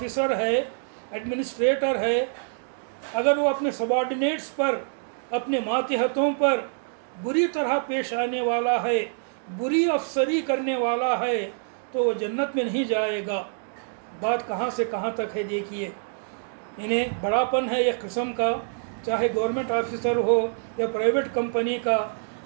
ہے، ایڈمنسٹریٹر ہے، اگر وہ اپنے سبارڈینیٹس پر، اپنے ماتحتوں پر بری طرح پیش آنے والا ہے، بری افسری کرنے والا ہے، تو وہ جنت میں نہیں جائے گا۔ بات کہاں سے کہاں تک ہے دیکھیے، انہیں بڑا پن ہے ایک قسم کا، چاہے گورنمنٹ آفیسر ہو یا پرائیویٹ کمپنی کا،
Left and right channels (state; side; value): silent; left; digital silence